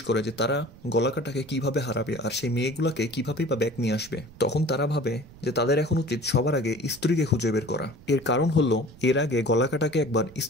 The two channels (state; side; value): noise; right; rumble, 21 dB below the sound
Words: করে যে তারা গলা কাটাকে কিভাবে হারাবে আর সেই মেয়েগুলাকে কিভাবেই বা ব্যাক নিয়ে আসবে। তখন তারা ভাবে যে তাদের এখন উচিত সবার আগে স্ত্রীকে খুঁজে বের করা। এর কারণ হলো এর আগে গলা কাটাকে একবার